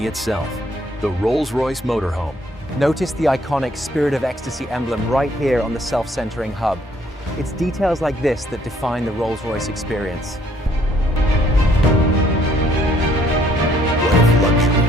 itself. The Rolls-Royce Motorhome. Notice the iconic Spirit of Ecstasy emblem right here on the self-centering hub. It's details like this that define the Rolls-Royce experience. What if luxury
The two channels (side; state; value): both; normal; correlation 0.64